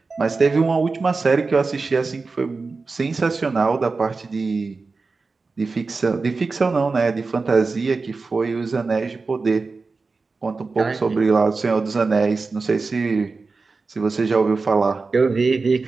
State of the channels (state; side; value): quieter; left; 4.1 dB